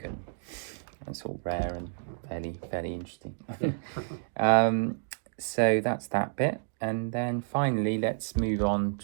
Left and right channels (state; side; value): silent; left; digital silence